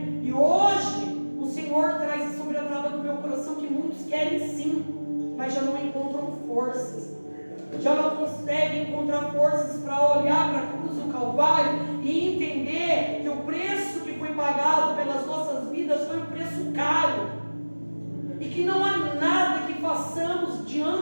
E hoje o Senhor traz sobre a trava do meu coração que muitos querem sim, mas já não encontram forças, já não conseguem encontrar forças para olhar para a cruz do Calvário e entender que o preço que foi pagado pelas nossas vidas foi um preço caro, e que não há nada que façamos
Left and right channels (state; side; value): inverted; both; correlation -1.00